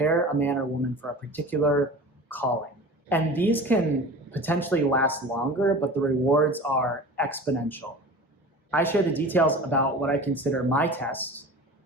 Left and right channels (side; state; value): both; normal; correlation 0.36